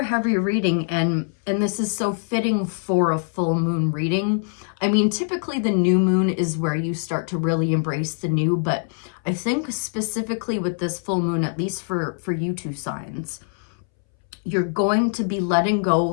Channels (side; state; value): right; silent; 63 dB below the other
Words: heavy reading, and this is so fitting for a full moon reading. I mean, typically the new moon is where you start to really embrace the new, but I think specifically with this full moon, at least for you two signs, you're going to be letting go.